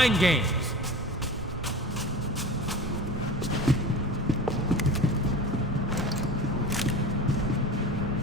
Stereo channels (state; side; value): normal; both; correlation 0.34